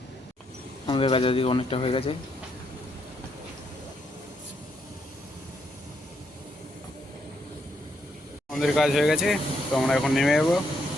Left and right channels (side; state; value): both; normal; correlation 0.76